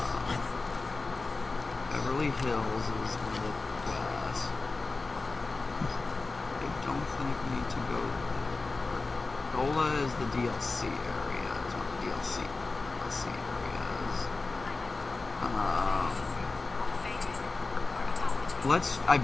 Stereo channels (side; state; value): right; quieter; 3.7 dB